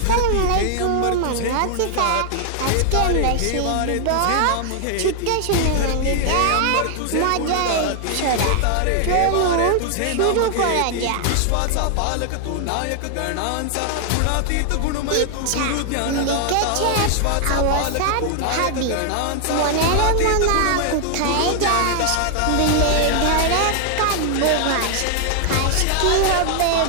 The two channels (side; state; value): both; different; correlation 0.00